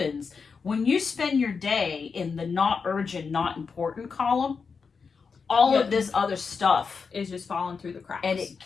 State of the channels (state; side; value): quieter; right; 5.4 dB